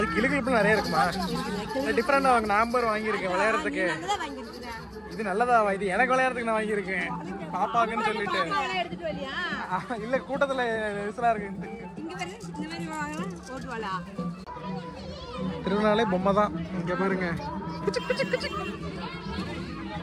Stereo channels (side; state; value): both; identical; correlation 1.00